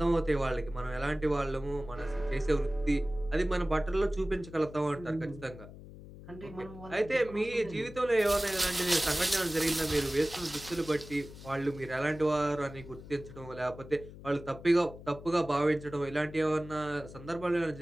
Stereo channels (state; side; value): noise; left; hum, 16 dB below the sound